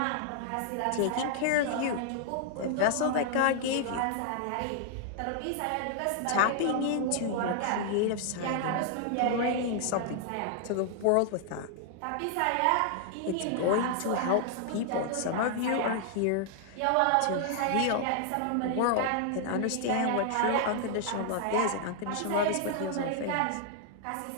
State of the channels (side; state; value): both; different; correlation -0.01